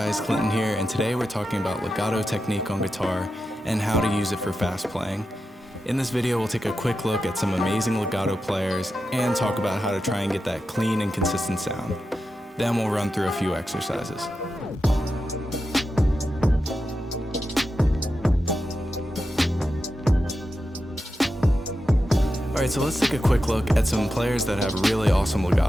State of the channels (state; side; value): normal; both; correlation 0.90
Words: Clinton here, and today we're talking about legato technique on guitar and how to use it for fast playing. In this video, we'll take a quick look at some amazing legato players and talk about how to try and get that clean and consistent sound. Then we'll run through a few exercises. Alright, so let's take a quick look at some players that have really awesome